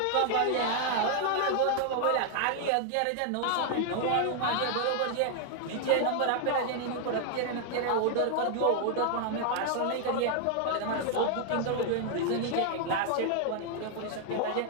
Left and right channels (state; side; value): different; both; correlation 0.00